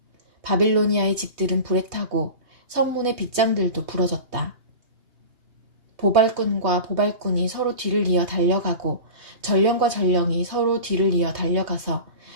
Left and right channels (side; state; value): left; late; 3.2 ms